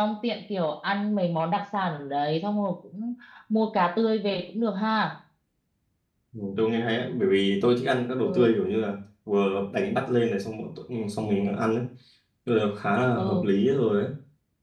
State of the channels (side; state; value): both; identical; correlation 1.00